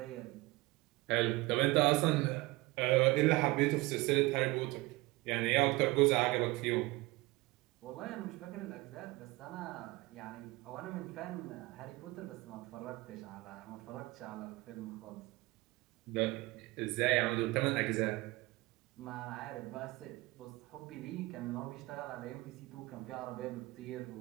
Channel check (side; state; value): left; quieter; 21.2 dB